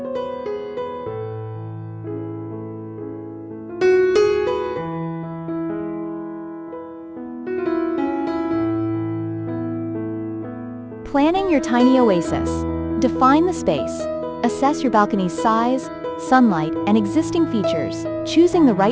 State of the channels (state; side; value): identical; both; correlation 1.00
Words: Planning your tiny oasis. Define the space. Assess your balcony's size, sunlight, and existing features, choosing the